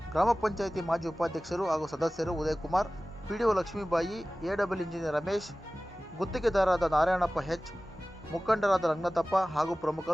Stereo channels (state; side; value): normal; both; correlation 0.97